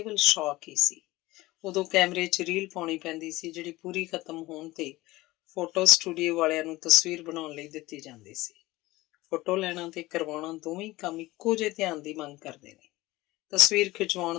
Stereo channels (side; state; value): right; quieter; 19.2 dB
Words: ਸ਼ੌਕ ਹੀ ਸੀ। ਉਦੋਂ ਕੈਮਰੇ 'ਚ ਰੀਲ ਪਾਉਣੀ ਪੈਂਦੀ ਸੀ, ਜਿਹੜੀ ਪੂਰੀ ਖਤਮ ਹੋਣ ਤੇ ਫੋਟੋ ਸਟੂਡੀਓ ਵਾਲਿਆਂ ਨੂੰ ਤਸਵੀਰ ਬਣਾਉਣ ਲਈ ਦਿੱਤੀ ਜਾਂਦੀ ਸੀ। ਫੋਟੋ ਲੈਣਾ ਤੇ ਕਰਵਾਉਣਾ ਦੋਵੇਂ ਕੰਮ ਇੱਕੋ ਜਿਹੇ ਧਿਆਨ ਦੀ ਮੰਗ ਕਰਦੇ ਨੇ। ਤਸਵੀਰ